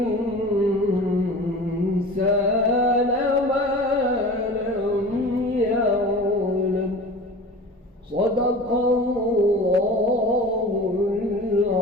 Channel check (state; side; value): normal; both; correlation 0.37